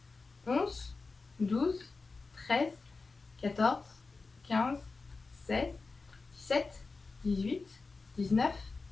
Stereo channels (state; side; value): quieter; right; 4.0 dB